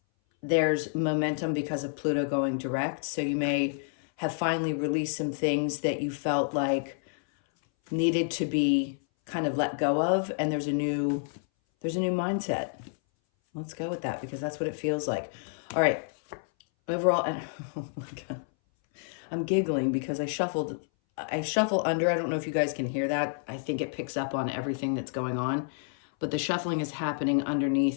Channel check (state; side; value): silent; right; 58 dB below the other